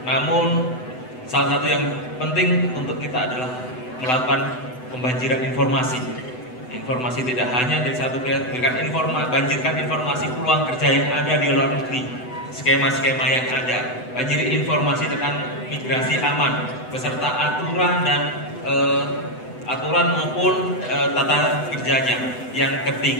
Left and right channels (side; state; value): right; late; 8.0 ms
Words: Namun salah satu yang penting untuk kita adalah melakukan pembanjiran informasi. Informasi tidak hanya dari satu pihak, banjirkan informasi peluang kerja yang ada di luar negeri, skema-skema yang ada, banjiri informasi tentang migrasi aman, beserta aturan dan aturan maupun tata kerjanya. Yang